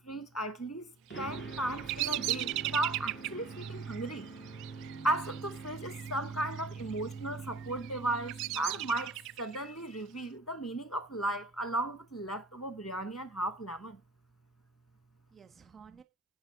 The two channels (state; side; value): quieter; left; 3.0 dB